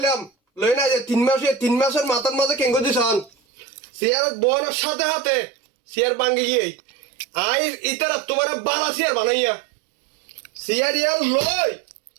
লই না যে 3 মাসের মাথার মাঝে কেঙ্গো দিছন সিয়ার বনের সাথে হাতে সিয়ার ভাঙ্গি গিয়ে আই ইতারা তোমার বালা সিয়ার বানাইয়া সিয়ার ইয়ান লই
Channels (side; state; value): left; drops out; at 3.3 s